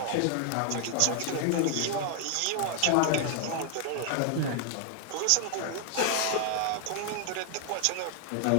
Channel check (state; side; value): different; both; correlation 0.00